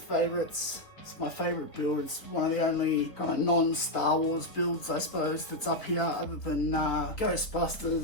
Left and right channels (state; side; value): late; right; 3.6 ms